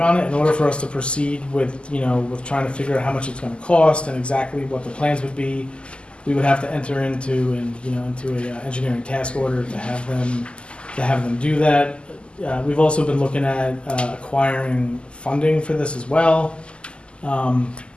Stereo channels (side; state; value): right; late; 0.051 ms